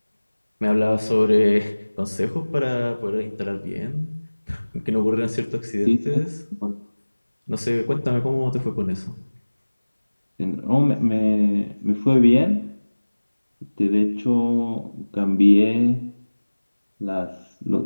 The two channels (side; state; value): both; inverted; correlation -1.00